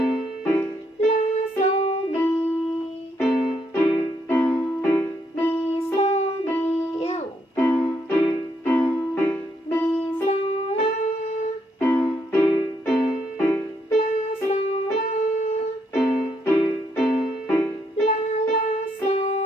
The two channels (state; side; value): normal; both; correlation 0.74